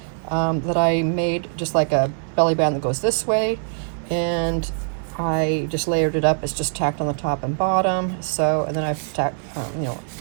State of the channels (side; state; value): left; silent; 59 dB below the other